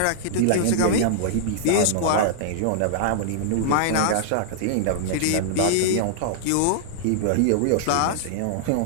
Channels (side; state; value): both; different; correlation -0.01